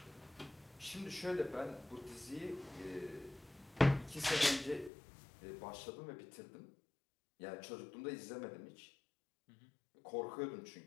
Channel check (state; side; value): drops out; right; at 4.9 s